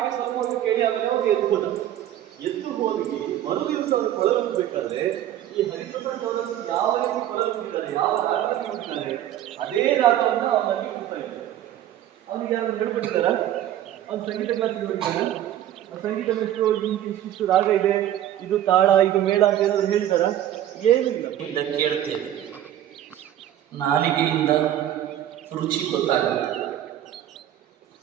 ಸ್ವಲ್ಪ ಹೊತ್ತು ಕೇಳಿ ಆಮೇಲೆ ಅವ್ರು ಎದ್ದು ಹೋಗಿ ಮರುದಿವಸ ಅವರು ಕೊಳಲುಬೇಕಾದ್ರೆ ಈ ಹರಿಪ್ರಸಾದ್ ಅವರನ್ನು ಯಾವ ರೀತಿ ಕೊಳಲುತ್ತಾರೆ, ಯಾವ ರಾಗದಲ್ಲಿ ಹೋಗ್ತಾರೆ, ಅದೇ ರಾಗವನ್ನು ಅವನಲ್ಲಿ ಹೋಗ್ತಾ ಇದ್ದಾರೆ. ಅವನಿಗೆ ಯಾರು ಹೇಳ್ಬಿಡ್ತಾರ, ಅವ್ನು ಸಂಗೀತ ಕ್ಲಾಸಿಗೆ ಹೋಗಿದ್ದಾನ, ಸಂಗೀತ ಎಷ್ಟು ಇಷ್ಟು ರಾಗ ಇದೆ, ಇದು ತಾಳ, ಇದು ಮೇಳ ಅಂತ ಏನಾದ್ರು ಹೇಳ್ತಾರ? ಏನಿಲ್ಲ. ಕೇಳ್ತೇವೆ, ನಾಲಿಗೆಯಿಂದ ರುಚಿ ಗೊತ್ತಾಗುತ್ತೆ,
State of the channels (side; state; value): left; quieter; 11.9 dB